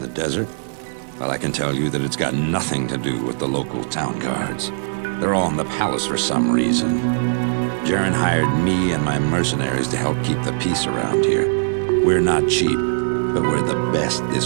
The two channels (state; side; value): silent; left; digital silence